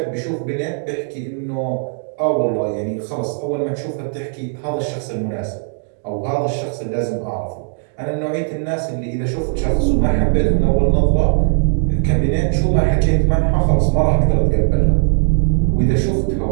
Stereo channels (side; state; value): left; silent; digital silence